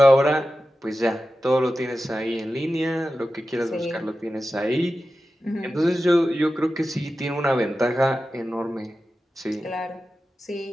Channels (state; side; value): normal; both; correlation 0.93